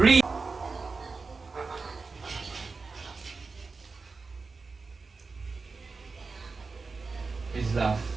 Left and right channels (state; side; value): quieter; left; 4.3 dB